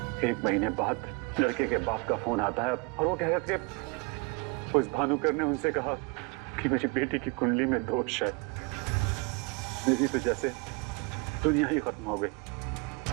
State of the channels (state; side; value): quieter; left; 29.1 dB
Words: 1 महीने बाद लड़के के बाप का फोन आता है और वो कह रहे थे उस भानुकर ने उनसे कहा कि मेरी बेटी की कुंडली में दोष है। मेरी तो जैसे दुनिया ही खत्म हो गई।